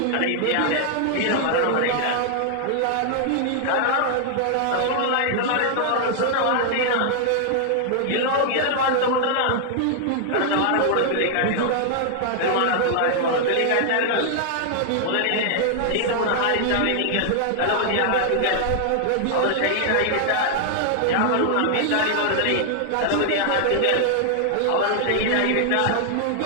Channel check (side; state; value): both; different; correlation 0.00